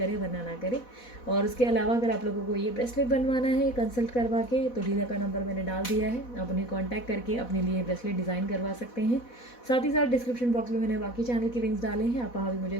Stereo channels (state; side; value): late; right; 4.1 ms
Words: वरना ना करें। और उसके अलावा अगर आप लोगों को ये ब्रेसलेट बनवाना है कंसल्ट करवा के, तो डीलर का नंबर मैंने डाल दिया है, आप उन्हें कॉन्टैक्ट करके अपने लिए ब्रेसलेट डिज़ाइन करवा सकते हैं। साथ ही साथ डिस्क्रिप्शन बॉक्स में मैंने बाकी चैनल के लिंक्स डाले हैं, आप वहाँ भी मुझे